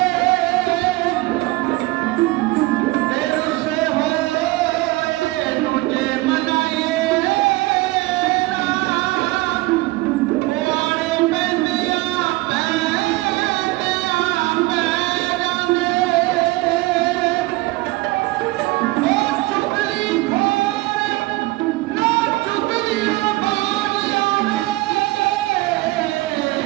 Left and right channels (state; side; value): quieter; left; 20.6 dB